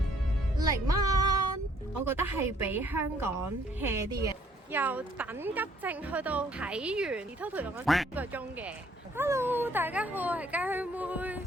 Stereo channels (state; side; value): normal; both; correlation 0.63